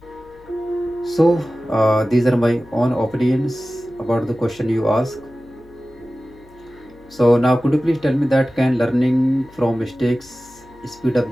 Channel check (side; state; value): left; noise; hum, 26 dB below the sound